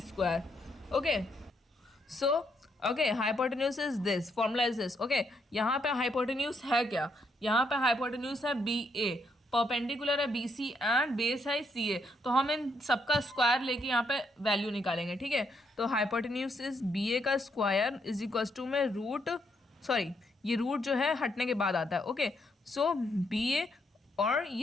okay. So okay, hypotenuse is this, formula is this, okay. यहाँ पे हाइपोटेन्यूज है क्या, यहाँ पे हाइपोटेन्यूज है BA, परपेंडिकुलर है BC एंड बेस है CA, तो हम इन सबका स्क्वायर लेके यहाँ पे वैल्यू निकालेंगे, ठीक है। तो हाइपोटेन्यूज इज BA का स्क्वायर इज इक्वल्स टू में रूट, सॉरी ये रूट जो है हटने के बाद आता है, ओके। सो BA और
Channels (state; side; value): normal; both; correlation 0.76